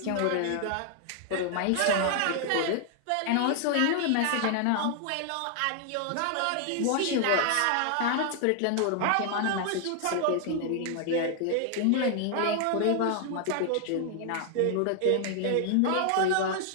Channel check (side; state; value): both; different; correlation 0.00